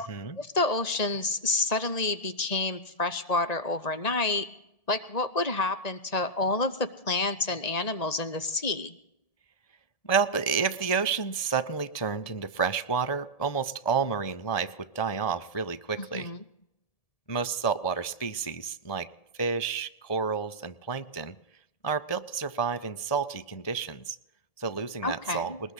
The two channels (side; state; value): right; late; 1.7 ms